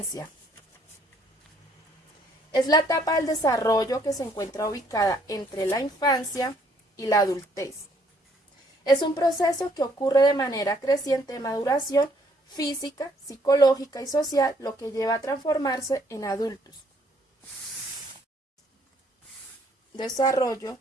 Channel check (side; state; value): both; normal; correlation 0.65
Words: Es la etapa del desarrollo que se encuentra ubicada entre la infancia y la adultez. Es un proceso que ocurre de manera creciente de maduración física, psicológica y social, lo que lleva a transformarse en adultos. Desarrollo